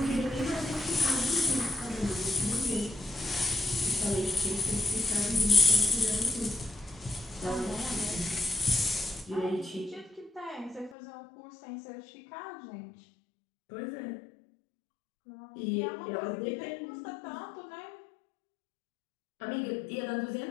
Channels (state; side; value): drops out; right; at 11.0 s